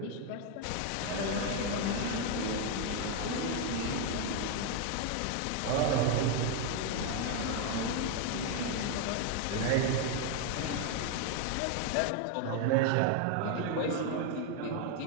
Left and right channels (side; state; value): both; different; correlation 0.01